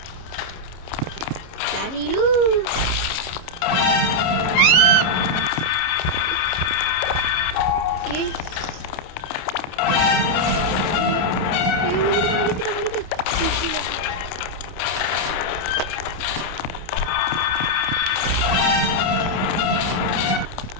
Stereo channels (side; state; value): right; late; 29 ms